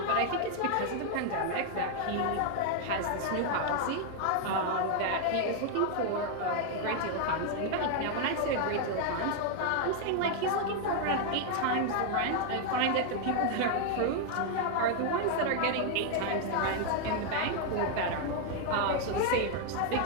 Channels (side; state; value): both; different; correlation 0.00